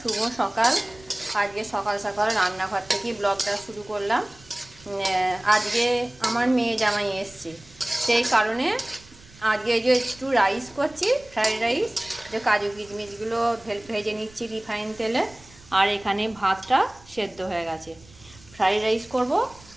শুভ সকাল। আজকে সকাল সকাল রান্নাঘর থেকেই ব্লগটা শুরু করলাম। আজকে আমার মেয়ে জামাই এসছে, সেই কারণে আজকে যে একটু রাইস করছি, ফ্রাইড রাইস। যে কাজু কিশমিশগুলো ভেজে নিচ্ছি রিফাইন তেলে। আর এখানে ভাতটা সেদ্ধ হয়ে গেছে। ফ্রাইড রাইস করব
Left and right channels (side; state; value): right; noise; rumble, 24 dB below the sound